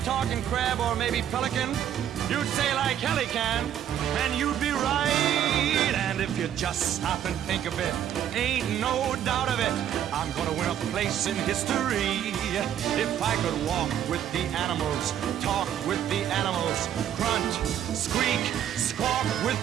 talk in crab or maybe pelican? You'd say like hell he can, and you'd be right. And if you just stop and think of it, ain't no doubt of it, I'm gonna win a place in history. If I could walk with the animals, talk with the animals, grunt, squeak, squawk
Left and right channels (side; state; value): left; quieter; 10.3 dB